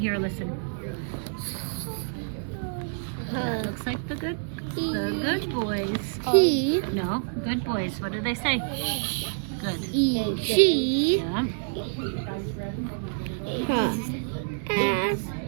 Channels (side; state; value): left; silent; digital silence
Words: a listen. That looks like the good boys. No, good boys. What do they say? Good. She Yeah.